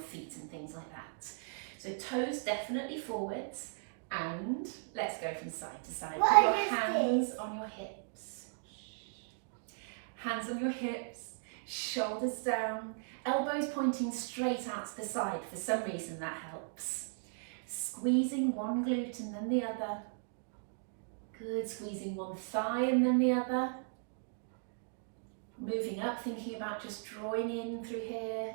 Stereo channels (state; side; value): silent; left; digital silence